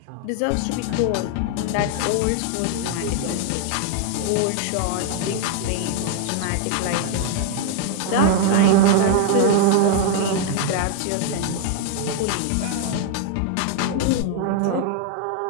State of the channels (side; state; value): both; different; correlation 0.00